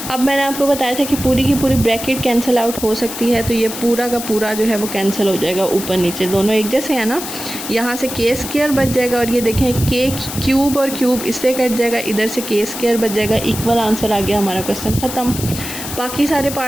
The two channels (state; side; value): noise; left; hiss, 8 dB below the sound